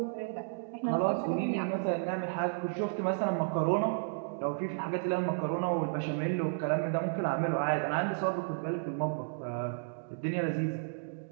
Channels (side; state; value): left; silent; digital silence